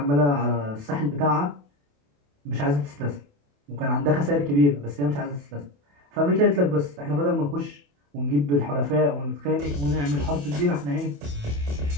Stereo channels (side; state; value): left; late; 28 ms